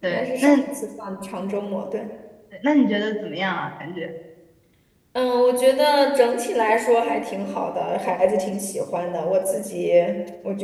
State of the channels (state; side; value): identical; both; correlation 1.00